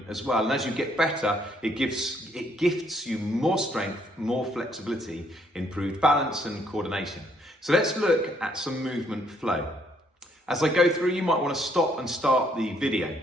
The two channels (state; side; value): normal; both; correlation 0.68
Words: as well. And as you get better, it gifts you more strength, more flexibility, improved balance and coordination. So let's look at some movement flow. As I go through, you might want to stop and start the video.